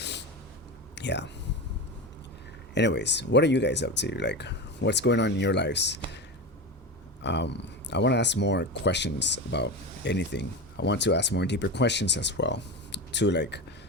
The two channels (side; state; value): both; normal; correlation 0.23